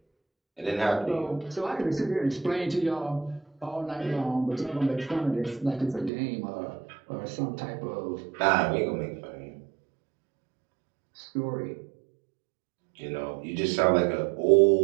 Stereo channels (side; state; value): left; drops out; at 6.1 s